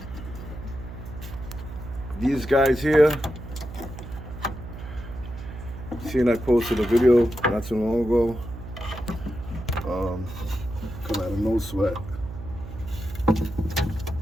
These guys here, seen I posted a video not too long ago. Come out of No Sweat. You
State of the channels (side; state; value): right; noise; hum, 11 dB below the sound